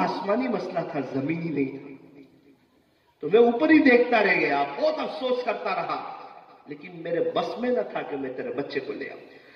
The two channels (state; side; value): identical; both; correlation 1.00